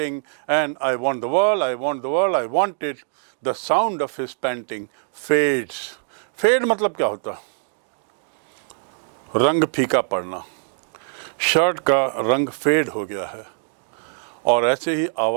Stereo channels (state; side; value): silent; left; digital silence